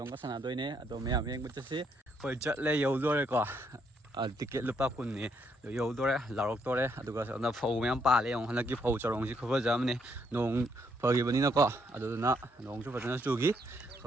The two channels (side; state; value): both; normal; correlation 0.73